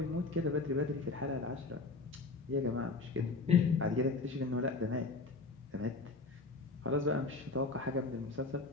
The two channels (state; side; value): quieter; right; 3.7 dB